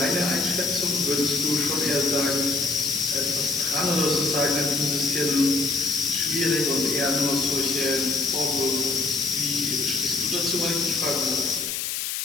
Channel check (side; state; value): left; noise; hiss, 3 dB below the sound